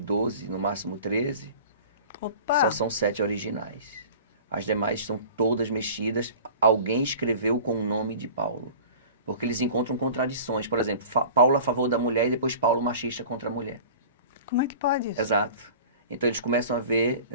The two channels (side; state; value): both; inverted; correlation -0.41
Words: no máximo 13, Opa! só são 7 originais. As demais estão todas mexidas, alguém escreveu com o nome de Paulo. Porque eles encontram contradições. Por exemplo, Paulo a favor da mulher e depois Paulo machista contra a mulher. Como é que pode isso? Exato. Então eles começam a ver,